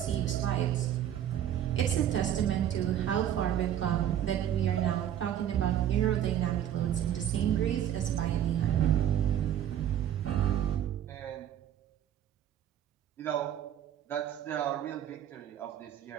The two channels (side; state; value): left; quieter; 10.6 dB